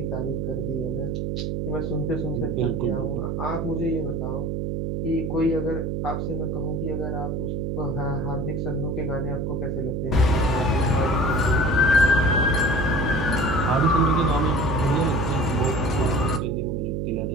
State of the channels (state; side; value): noise; right; hum, 1 dB below the sound